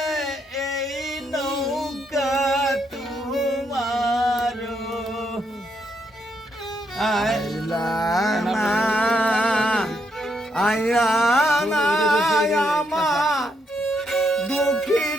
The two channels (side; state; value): both; normal; correlation 0.77